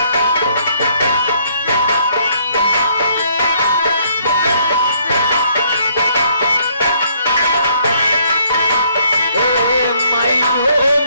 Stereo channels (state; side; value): inverted; both; correlation -0.65